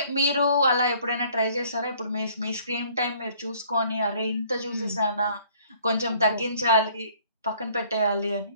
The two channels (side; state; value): both; inverted; correlation -0.58